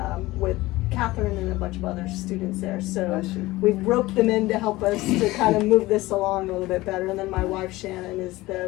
with Catherine and a bunch of other students there. So I see. we've roped them in to help us to kind of move this along a little bit better. And then my wife Shannon is the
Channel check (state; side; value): quieter; right; 19.0 dB